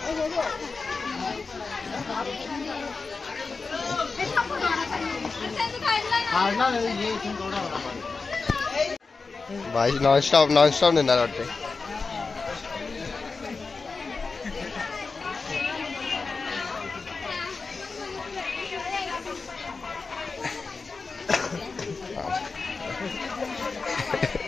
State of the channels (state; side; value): quieter; right; 4.3 dB